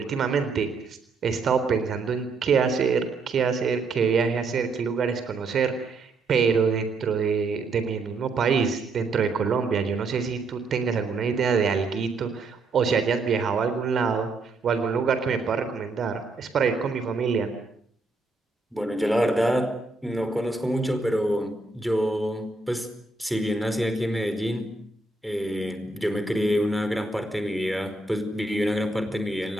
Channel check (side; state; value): left; quieter; 3.6 dB